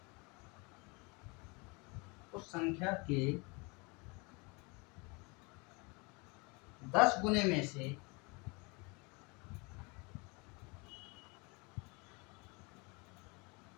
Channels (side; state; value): right; quieter; 28.9 dB